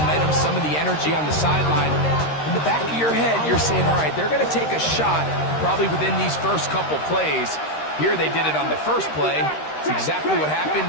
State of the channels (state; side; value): late; right; 13 ms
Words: some of the energy on the sideline. In the back of your head, you're saying, all right, they're going to take a shot probably within these first couple plays. Here they did it on the first play. It's exactly what happened.